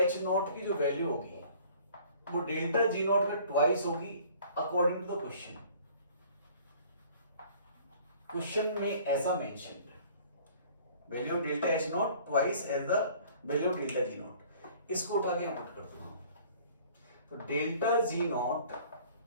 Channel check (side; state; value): both; inverted; correlation -0.52